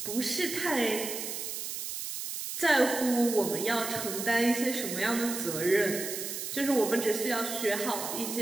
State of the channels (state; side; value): noise; right; hiss, 5 dB below the sound